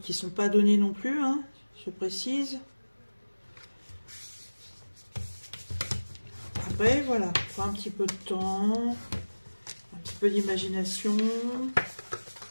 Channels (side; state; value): both; inverted; correlation -1.00